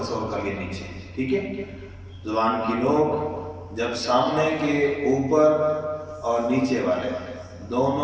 تصور کر لیا نیچے، ٹھیک ہے. زبان کی نوک جب سامنے کے اوپر اور نیچے والے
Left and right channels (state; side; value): identical; both; correlation 1.00